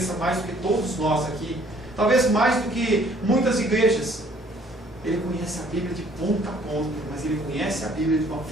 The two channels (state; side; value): normal; both; correlation 0.59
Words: mais do que todos nós aqui, talvez mais do que muitas igrejas. Ele conhece a Bíblia de ponta a ponta, mas ele conhece a Bíblia de uma